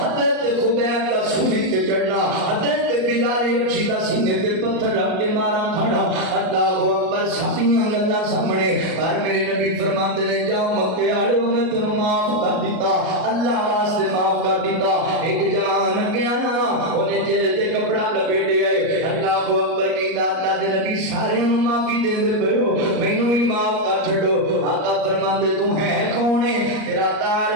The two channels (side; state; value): left; late; 38 ms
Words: خبیب دا سولی تے چڑھنا حضرت بلال حبشی دا سینے تے پتھر رکھ کے مارا کھڑا اللہ اکبر ساریاں گلاں سامنے پر میرے نبی فرماندے نے جاؤ مکے والےو میں تینوں معاف کر دیتا اللہ واسطے معاف کر دیتا ایک جوان گیا نا اونے چہرے تے کپڑا لپیٹے آئے اللہ اکبر کہندا اللہ دے نبی سارے نوں معافی دیندے پئے ہو مینوں ہی معاف کر چھڈو آقا فرماندے تو ہے کون ہے تیرا